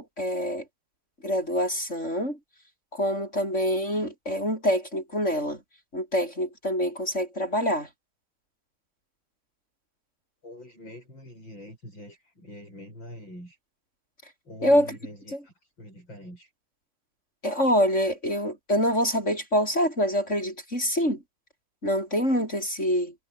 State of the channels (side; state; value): right; late; 3.5 ms